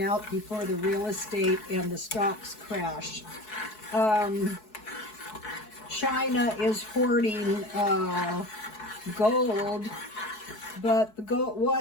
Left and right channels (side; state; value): right; late; 4.7 ms